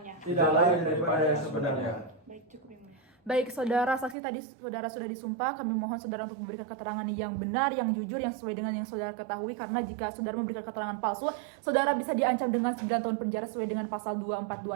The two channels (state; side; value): drops out; left; at 4.2 s